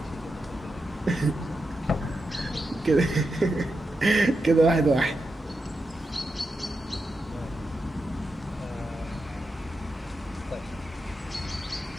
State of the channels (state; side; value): normal; both; correlation 0.87